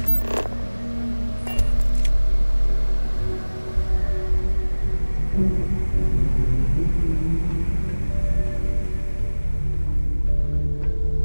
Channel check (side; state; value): both; inverted; correlation -1.00